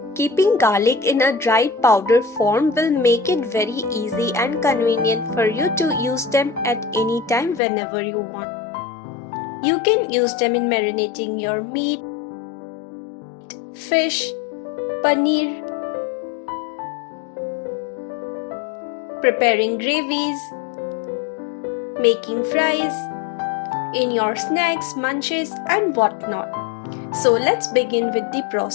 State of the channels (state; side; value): drops out; right; at 7.6 s